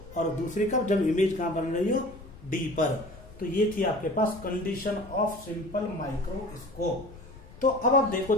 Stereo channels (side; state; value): left; noise; rumble, 18 dB below the sound